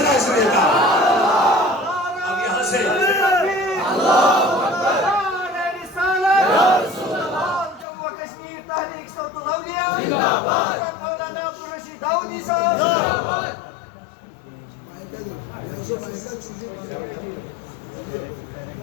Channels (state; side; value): drops out; right; at 7.9 s